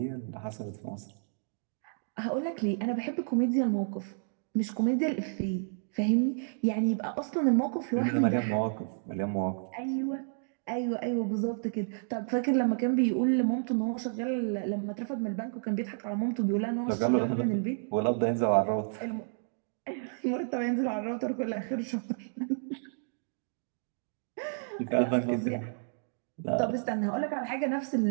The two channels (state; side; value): silent; left; digital silence